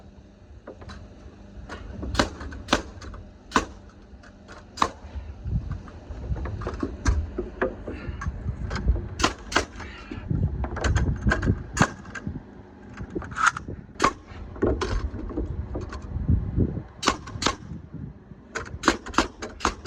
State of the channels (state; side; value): identical; both; correlation 1.00